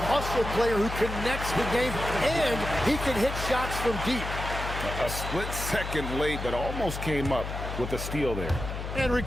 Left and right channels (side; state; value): left; noise; hum, 6 dB below the sound